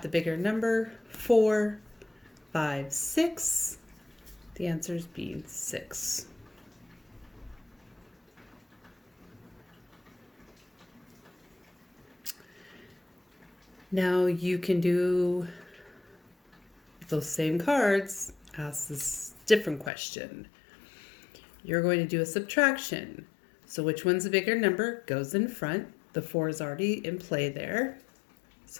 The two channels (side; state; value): right; drops out; at 19.9 s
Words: bigger number, 4, 5, 6. The answer is being 6. Now you can do those same cards, ask this different question. You're going to do a subtraction. So which one's the bigger number goes in front. The 4 is already in play there.